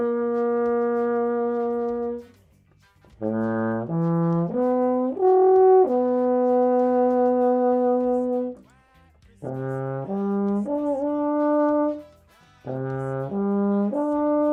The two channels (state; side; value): identical; both; correlation 1.00